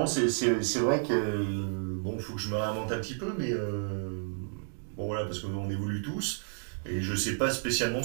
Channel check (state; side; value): silent; left; digital silence